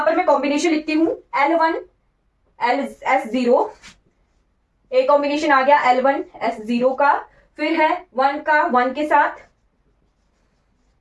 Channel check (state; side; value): identical; both; correlation 1.00